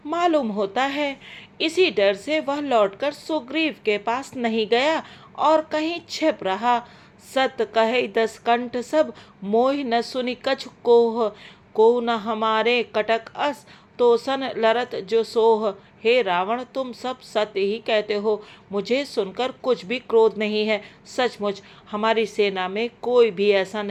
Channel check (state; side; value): identical; both; correlation 1.00